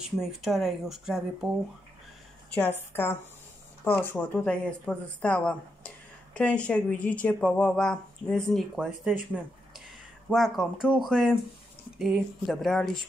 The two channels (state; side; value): normal; both; correlation 0.83